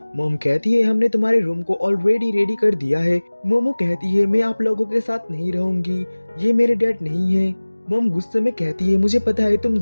मॉम कहती है हमने तुम्हारे रूम को ऑलरेडी रेडी कर दिया है। मोमो कहती है मैं आप लोगों के साथ नहीं रहूंगी, ये मेरे डैड नहीं है। मॉम गुस्से में कहती है मुझे पता है तुम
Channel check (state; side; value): inverted; both; correlation -1.00